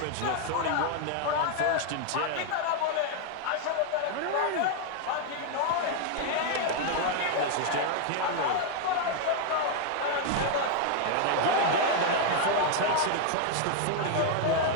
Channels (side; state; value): both; different; correlation 0.01